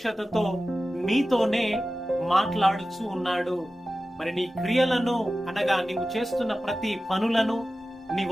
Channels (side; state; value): both; normal; correlation 0.95